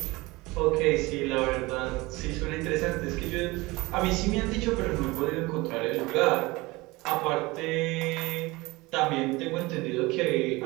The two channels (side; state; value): left; quieter; 22.2 dB